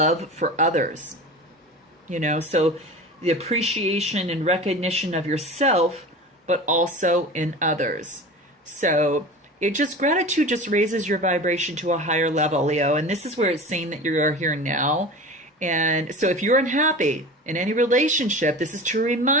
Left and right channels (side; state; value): both; normal; correlation 0.34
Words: for others. So the appreciation and recognition of yourself, but also in others. So gratitude just raises your vibration to a higher level, Leo. And this is where it's saying that you are here now. And so if you're unhappy in any relationship, this is to